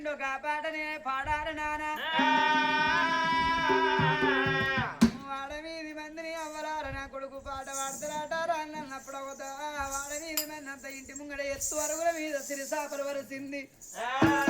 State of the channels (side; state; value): both; identical; correlation 1.00